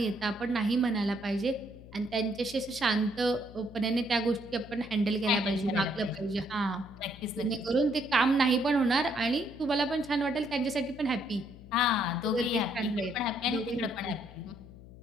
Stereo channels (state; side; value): noise; left; hum, 18 dB below the sound